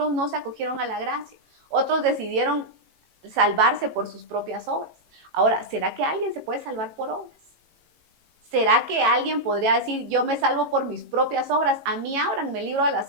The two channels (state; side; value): late; left; 18 ms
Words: no se acogieron a la gracia. Otros decidieron salvarse por sus propias obras. Ahora, ¿será que alguien se puede salvar por obras? ¿Será que alguien podría decir, yo me salvo por mis propias obras? A mí ábranme el libro de